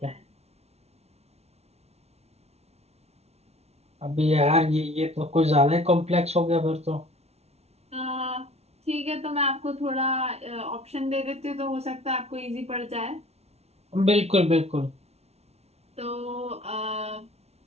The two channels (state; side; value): late; left; 0.31 ms